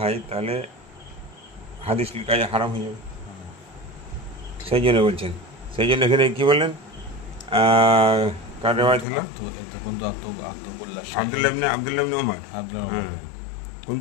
তাহলে হাদিস লিখা হারাম হয়ে যাবে। সেই জন্য বলছেন, সেই জন্য এখানে কী বললেন? কার রেওয়ায়াত হলো? আব্দুল্লাহ ইবনে ওমর।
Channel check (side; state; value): right; drops out; at 9.1 s